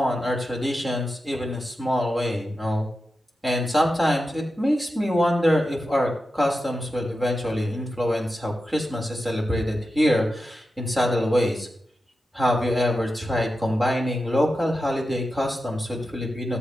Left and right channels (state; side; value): normal; both; correlation 0.91